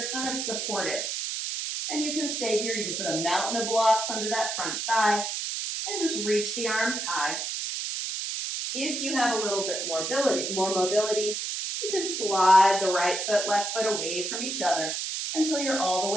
kind of supported. And you can stay here. You can put a mountain of blocks under that front thigh and just reach the arms high. If you have a little bit more mobility, you can slide the right foot, left foot away from each other until you're all the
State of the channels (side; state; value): right; noise; hiss, 3 dB below the sound